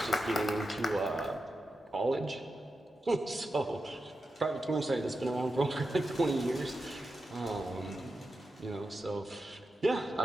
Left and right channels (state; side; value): normal; both; correlation 0.90